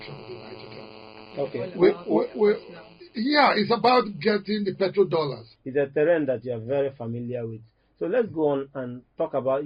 of the Niger Delta. Okay. It's about getting the petrodollars. It's a terrain that you are very familiar with. So let's go on and talk about,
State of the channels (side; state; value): both; identical; correlation 1.00